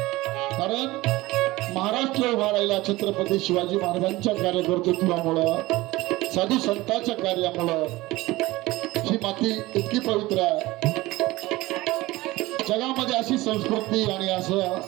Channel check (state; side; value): quieter; left; 19.4 dB